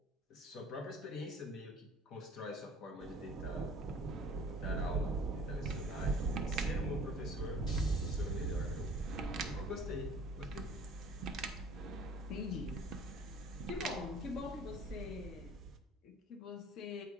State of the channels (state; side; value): normal; both; correlation 0.50